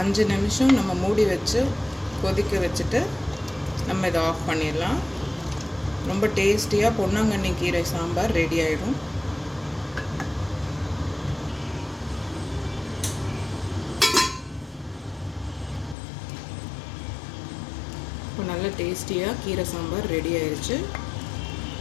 நிமிஷம் நம்ம மூடி வச்சு கொதிக்க வச்சுட்டு நம்ம இதை ஆஃப் பண்ணிடலாம். ரொம்ப டேஸ்டியாக பொன்னாங்கண்ணி கீரை சாம்பார் ரெடி ஆகிடும். இப்போ நல்ல டேஸ்டியாக கீரை சாம்பார் ரெடி ஆயிடுச்சு.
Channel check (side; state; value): right; drops out; at 16.0 s